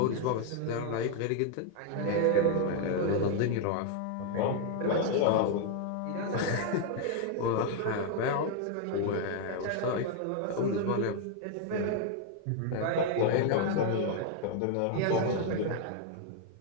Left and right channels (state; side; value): different; both; correlation 0.00